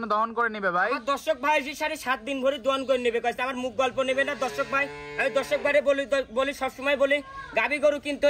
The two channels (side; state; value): both; identical; correlation 1.00